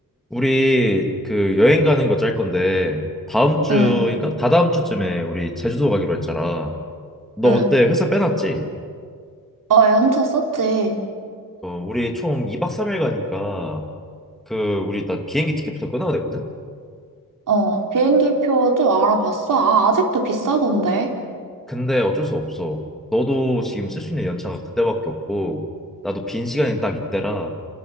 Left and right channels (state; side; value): normal; both; correlation 0.43